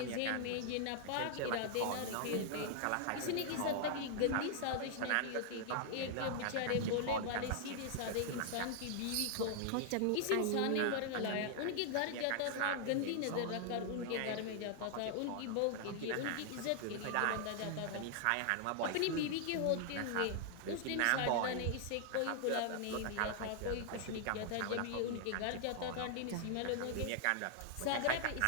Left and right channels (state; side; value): different; both; correlation 0.00